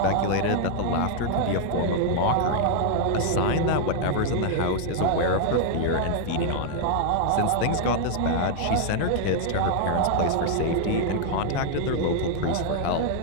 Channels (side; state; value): both; different; correlation 0.00